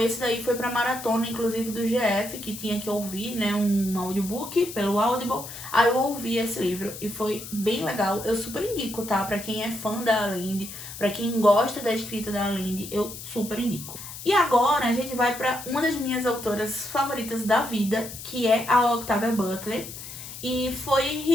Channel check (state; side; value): noise; left; hiss, 11 dB below the sound